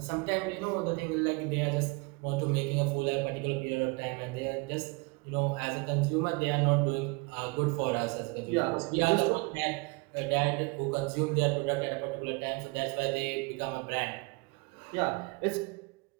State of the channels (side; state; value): left; quieter; 28.5 dB